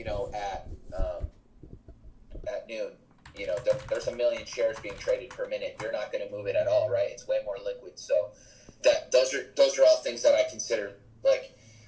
at noon, there's a million shares being traded per minute. You're not going to move it at all, right? It's way more liquid. So those are all things that I consider. Like,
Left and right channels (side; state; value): both; identical; correlation 1.00